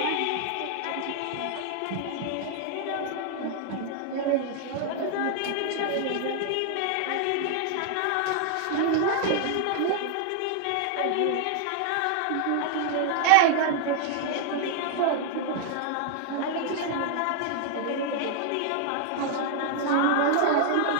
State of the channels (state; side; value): different; both; correlation 0.00